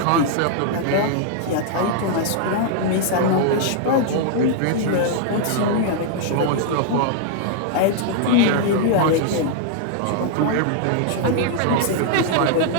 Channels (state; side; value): different; both; correlation -0.01